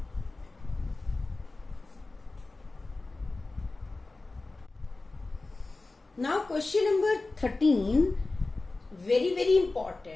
Now question number 13, very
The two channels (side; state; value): right; quieter; 3.3 dB